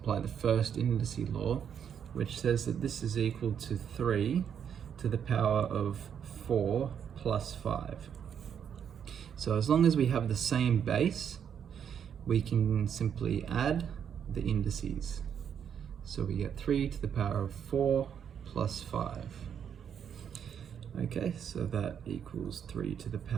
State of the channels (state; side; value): quieter; left; 8.1 dB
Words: the first indice law, which says that this is equal to 3 to the power of 4 plus 5. So as long as we have the same base, we can simply add the indices. So we get 3 to the power of 4 plus 5. Okay, so that equals 3 to the